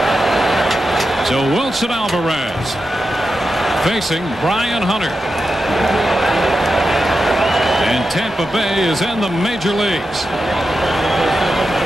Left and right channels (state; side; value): normal; both; correlation 0.89